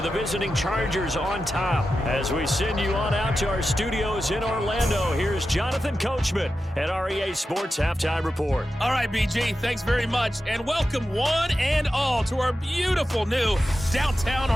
the visiting Chargers on top. As we send you on out to our studios in Orlando, here's Jonathan Coachman at REA Sports Halftime Report. All right, BG, thanks very much. And welcome one and all to our beautiful new downtown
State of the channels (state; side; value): normal; both; correlation 0.91